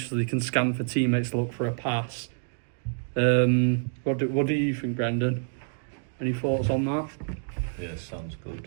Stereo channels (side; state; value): left; silent; digital silence